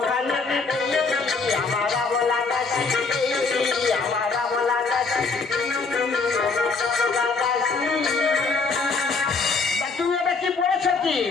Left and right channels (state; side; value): quieter; right; 4.3 dB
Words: কানে, আমার আবলা দাসী, আমার আবলা দাসী, তুমি এটা কি পড়েছ কি?